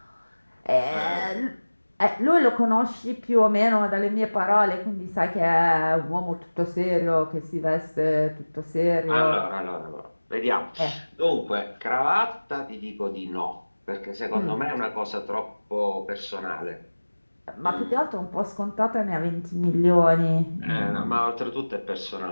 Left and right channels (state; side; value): inverted; both; correlation -1.00